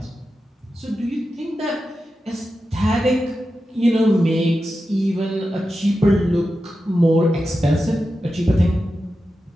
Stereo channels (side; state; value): both; normal; correlation 0.91